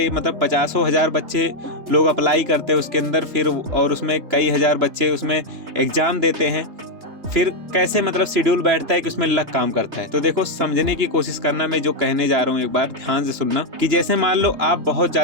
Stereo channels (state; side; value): late; left; 3.3 ms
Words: मतलब 50,000 बच्चे लोग अप्लाई करते हैं उसके अंदर, फिर और उसमें कई हजार बच्चे उसमें एग्जाम देते हैं। फिर कैसे मतलब शेड्यूल बैठता है कि उसमें लक काम करता है। तो देखो, समझने की कोशिश करना, मैं जो कहने जा रहा हूँ एक बार ध्यान से सुनना। कि जैसे मान लो आप बहुत